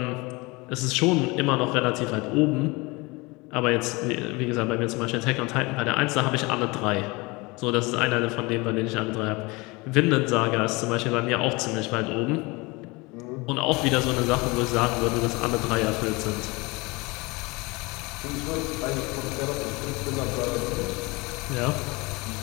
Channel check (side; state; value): right; quieter; 25.1 dB